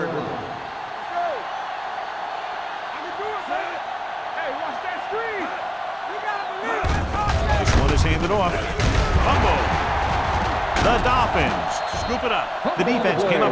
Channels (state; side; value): identical; both; correlation 1.00